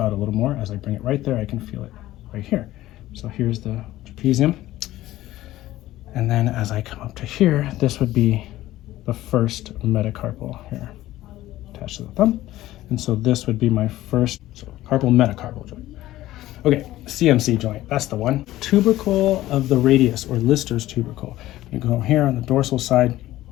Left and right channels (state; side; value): quieter; right; 15.5 dB